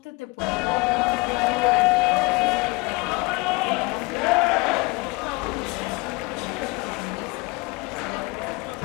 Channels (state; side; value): quieter; right; 25.8 dB